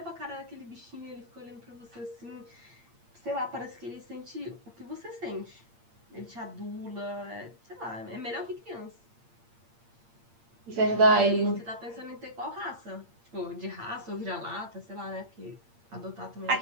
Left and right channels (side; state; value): left; late; 8.7 ms